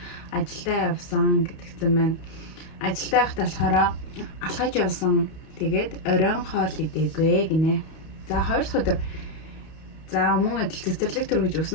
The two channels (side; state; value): right; late; 31 ms